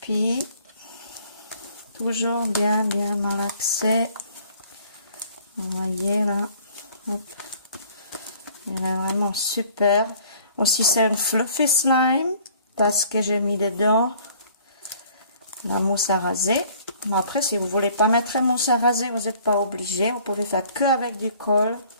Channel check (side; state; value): both; inverted; correlation -0.55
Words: Puis, toujours bien malaxé. Vous voyez là. Hop. Il est vraiment super. Aussi, c'est un fluffy slime. Parce que j'ai mis dedans la mousse à raser. Mais après, si vous voulez pas mettre la mousse à raser, vous n'êtes pas obligé. Vous pouvez faire que avec du colle,